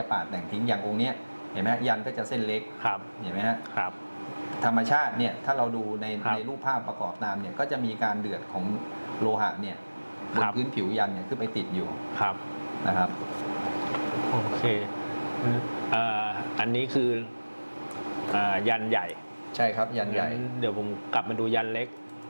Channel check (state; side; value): inverted; both; correlation -1.00